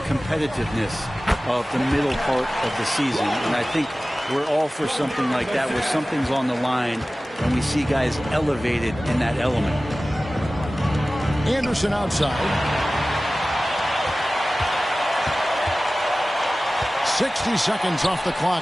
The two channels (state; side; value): normal; both; correlation 0.97